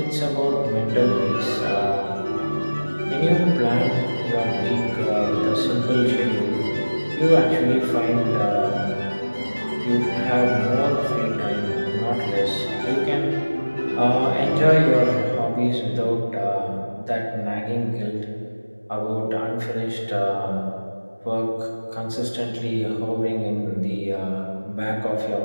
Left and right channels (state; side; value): inverted; both; correlation -1.00